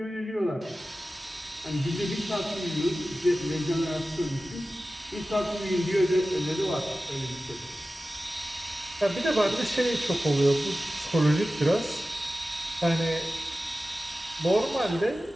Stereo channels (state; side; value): normal; both; correlation 0.95